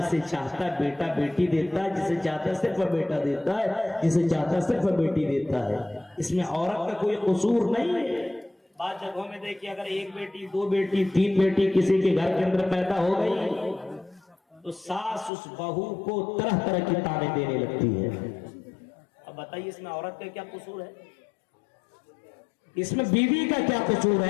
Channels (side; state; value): right; drops out; at 15.3 s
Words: चाहता है बेटा बेटी देता है, जिसे चाहता है सिर्फ बेटा देता है, जिसे चाहता है सिर्फ बेटी देता है। इसमें औरत का कोई कसूर नहीं है। बाद जगहों में देखिए, अगर एक बेटी दो बेटी तीन बेटी किसी के घर के अंदर पैदा हो गई, तो सास उस बहू को तरह तरह की ताने देने लगती है। अब बताइए इसमें औरत का क्या कसूर है? इसमें बीवी का क्या कसूर